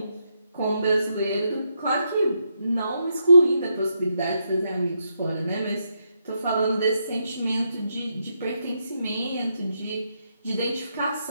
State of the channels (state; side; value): inverted; both; correlation -0.80